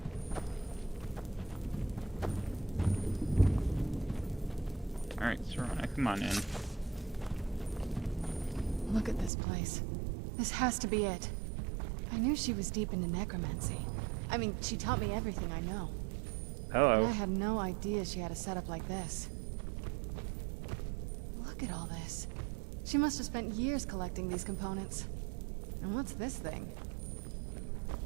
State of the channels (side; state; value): left; drops out; at 9.3 s